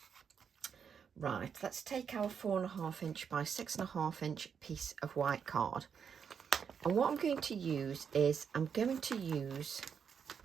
Right, let's take our 4.5 inch by 6.5 inch piece of white card, and what I'm going to use is I'm going to use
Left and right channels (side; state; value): left; quieter; 7.0 dB